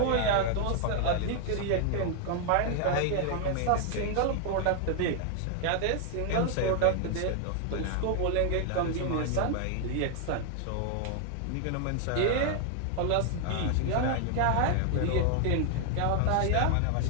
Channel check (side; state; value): both; different; correlation 0.00